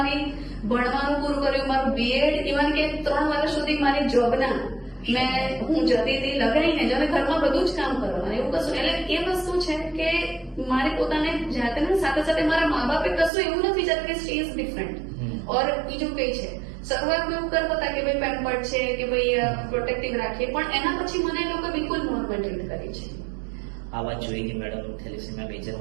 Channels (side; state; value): left; drops out; at 13.3 s